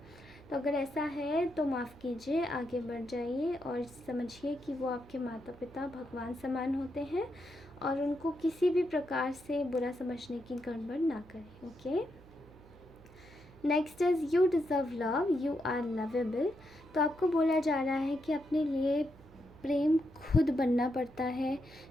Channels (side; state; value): right; noise; hum, 22 dB below the sound